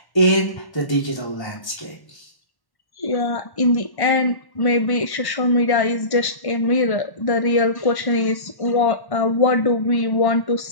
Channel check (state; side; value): late; right; 1.1 ms